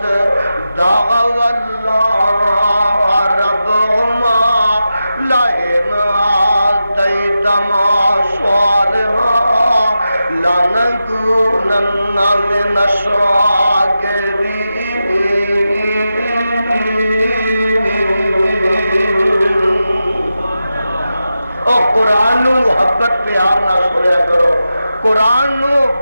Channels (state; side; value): inverted; both; correlation -0.91